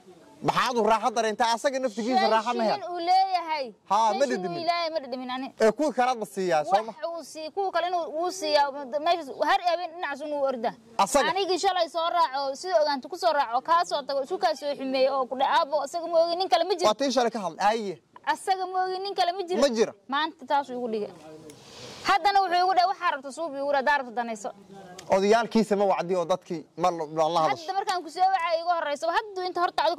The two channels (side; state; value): both; identical; correlation 1.00